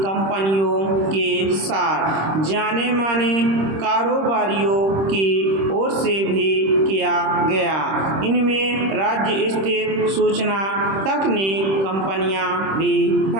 के साथ जाने माने कारोबारियों की ओर से भी किया गया। इनमें राज्य स्थित सूचना तकनीक कंपनियां भी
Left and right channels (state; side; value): late; left; 26 ms